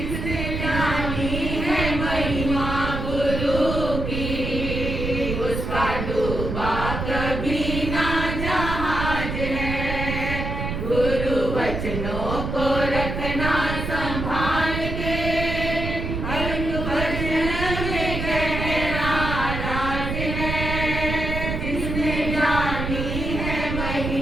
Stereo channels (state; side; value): noise; right; rumble, 3 dB below the sound